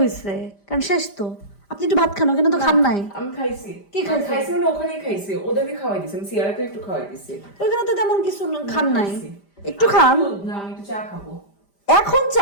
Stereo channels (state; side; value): late; right; 5.0 ms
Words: কারণ শেষ তো। আপনি একটু ভাত খান, ওখানে তো খান নাই। আমি খাইছি। কি খাইছি? মানে ওখানেই খাইছি, ওদেরকে খাওয়াই দিছি, আমি সিয়ারাকে একটু খাওয়াই দিছি। ওখানে তো তেমন কিছু খান নাই, একটু খান। না, আমি একটু চা খাবো। এখন